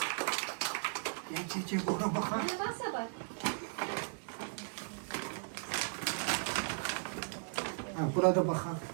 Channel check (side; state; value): left; silent; 53 dB below the other